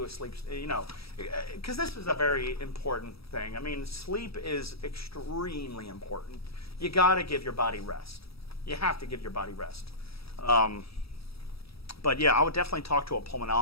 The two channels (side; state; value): right; late; 0.77 ms